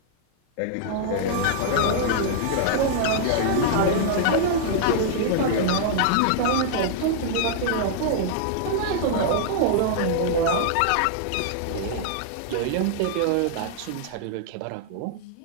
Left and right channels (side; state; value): both; different; correlation -0.01